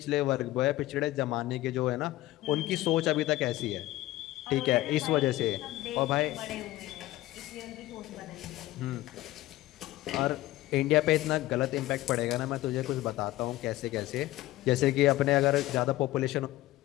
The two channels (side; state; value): right; quieter; 16.7 dB